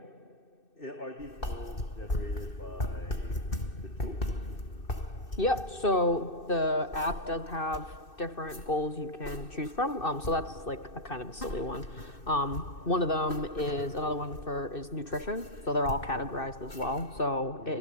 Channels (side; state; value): right; late; 2.6 ms